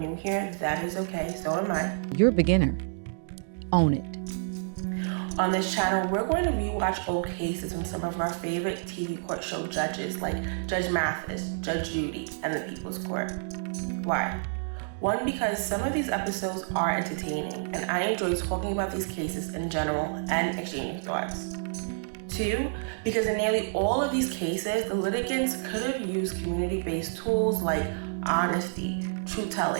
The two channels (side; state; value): left; silent; digital silence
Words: here, that is okay, so am I. You're a beginner. Own it. On this channel, we're going to rewatch old cases from some of our favorite TV court show judges like Judge Mathis, Judge Judy, and the People's Court. Why? One, because some of these episodes are entertaining, and I enjoy talking about these cases in general and exchanging thoughts. Two, because in nearly all of these cases, the litigants could have used community-based tools like honesty,